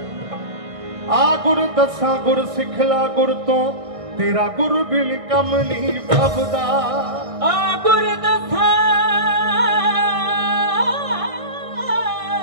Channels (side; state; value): left; late; 1.6 ms